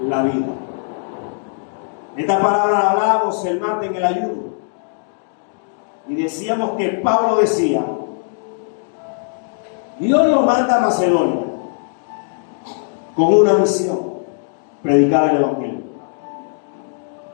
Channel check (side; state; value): right; silent; digital silence